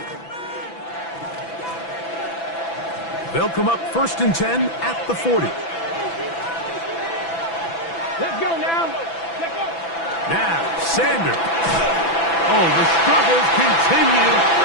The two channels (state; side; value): late; right; 6.0 ms